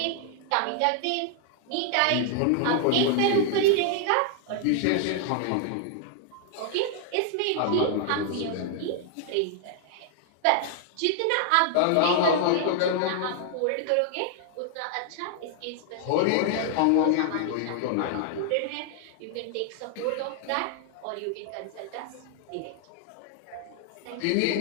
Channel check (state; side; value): different; both; correlation 0.00